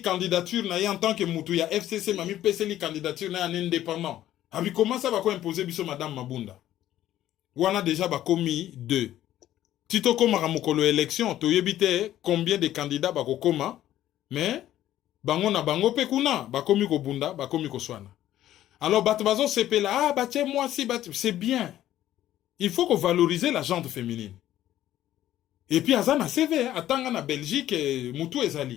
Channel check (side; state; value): right; quieter; 12.9 dB